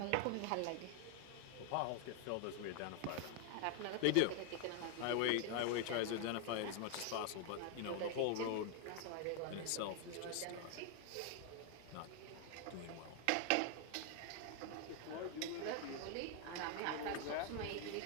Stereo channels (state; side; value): different; both; correlation 0.00